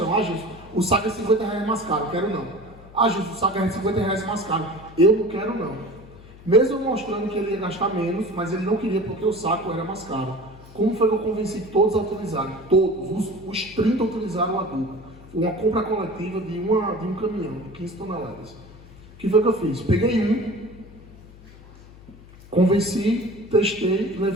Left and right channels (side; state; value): left; noise; hum, 20 dB below the sound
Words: Gilson, o saco é R$50 mais caro, quero não. Gilson, o saco é R$50 mais caro, eu não quero não. Mesmo mostrando que ele ia gastar menos, mas ele não queria porque o saco era mais caro. Como foi que eu convenci todos a utilizarem? Todos, os 30 utilizaram o adubo. Foi uma compra coletiva de um caminhão, de 15 toneladas. O que foi que eu fiz? Peguei convenci, testei,